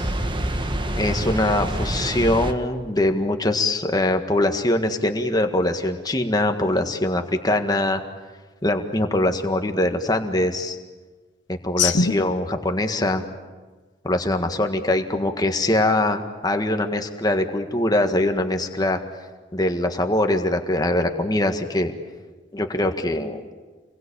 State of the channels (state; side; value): normal; both; correlation 0.54